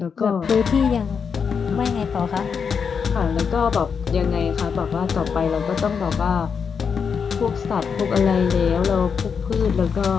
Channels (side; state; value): right; quieter; 6.3 dB